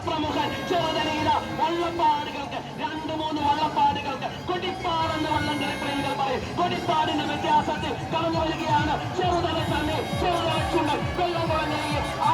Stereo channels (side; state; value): both; identical; correlation 1.00